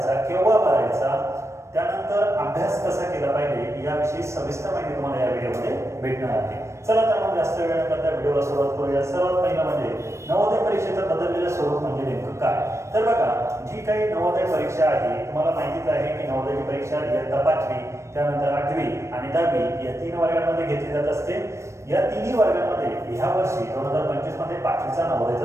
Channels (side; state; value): left; late; 0.13 ms